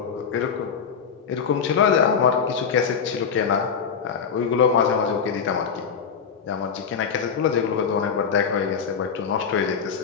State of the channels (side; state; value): right; quieter; 6.6 dB